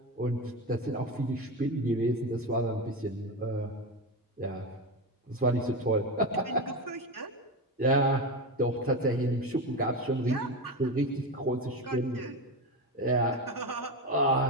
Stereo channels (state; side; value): normal; both; correlation 0.18